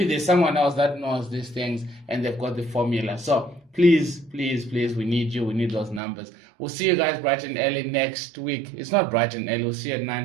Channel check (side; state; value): left; drops out; at 6.0 s